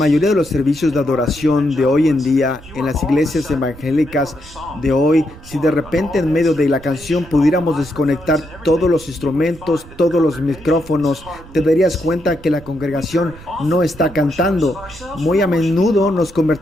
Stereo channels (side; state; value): right; noise; rumble, 19 dB below the sound